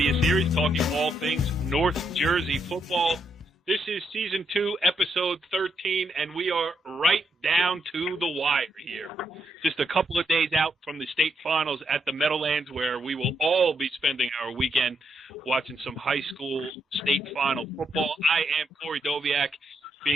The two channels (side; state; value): both; normal; correlation 0.78